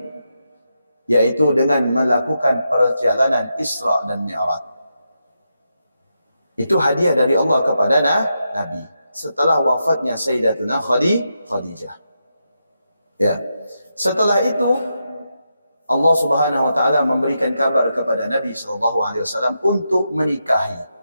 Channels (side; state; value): both; inverted; correlation -0.85